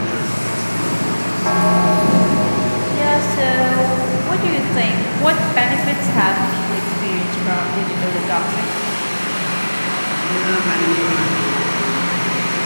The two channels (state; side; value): inverted; both; correlation -1.00